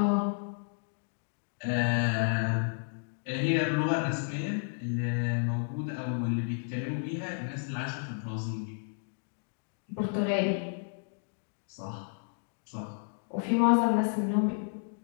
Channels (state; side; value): silent; right; digital silence